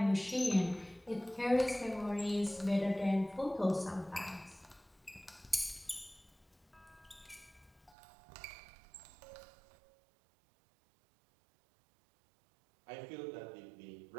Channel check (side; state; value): left; drops out; at 8.0 s